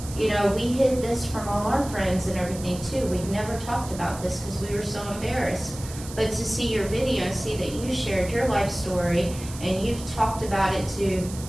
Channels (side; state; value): right; noise; hiss, 14 dB below the sound